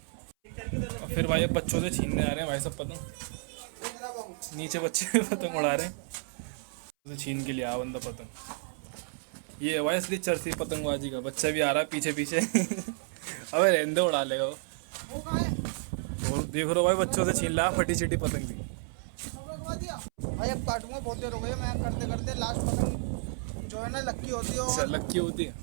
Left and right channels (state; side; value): silent; left; 57 dB below the other